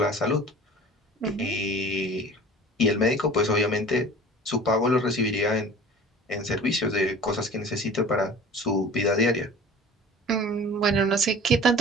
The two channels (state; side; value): normal; both; correlation 0.42